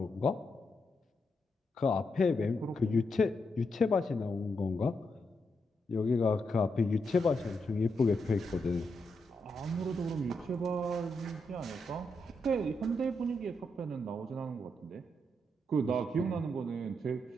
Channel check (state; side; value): normal; both; correlation 0.82